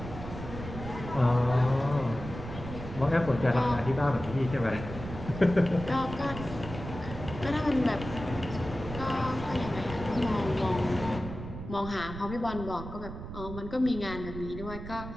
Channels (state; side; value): noise; right; rumble, 10 dB below the sound